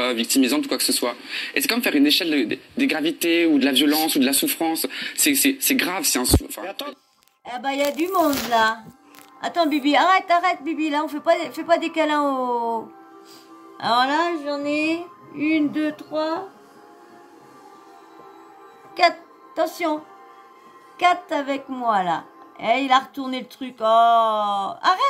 victimisante ou quoi que ce soit. Et c'est comme faire une échelle des gravités ou de la violence ou de la souffrance. C'est grave, c'est un. Eh ben, il y a du monde là. Attends, Bibi, arrête, Bibi, là, on fait pas des câlins au. Alors là, j'en ai 1, 2, 3, 4. Attention, 4 avec moi là. Et il a retourné le truc. Oh,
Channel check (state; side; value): identical; both; correlation 1.00